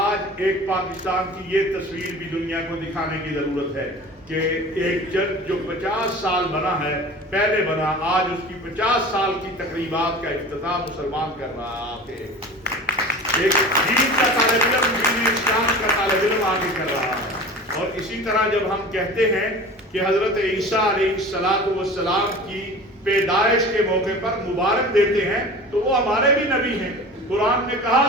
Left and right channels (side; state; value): both; normal; correlation 0.38